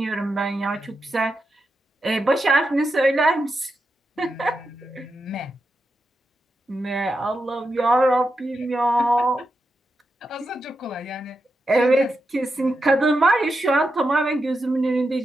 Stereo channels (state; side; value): normal; both; correlation 0.87